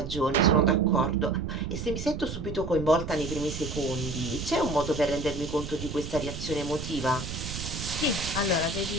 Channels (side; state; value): right; noise; rumble, 7 dB below the sound